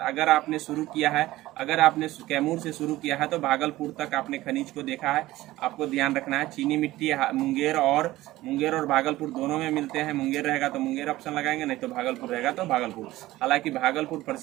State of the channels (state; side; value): quieter; left; 16.9 dB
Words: अगर आपने शुरू किया है, अगर आपने कैमूर से शुरू किया है तो भागलपुर तक आपने खनिज को देखा है। आपको ध्यान रखना है चीनी मिट्टी मुंगेर और भागलपुर दोनों में मिलते हैं। मुंगेर रहेगा तो मुंगेर ऑप्शन लगाएंगे, नहीं तो भागलपुर रहेगा तो भागलपुर। हालांकि भागलपुर